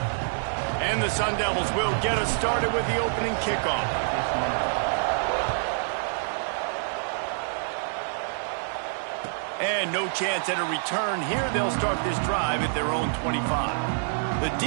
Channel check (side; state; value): left; silent; digital silence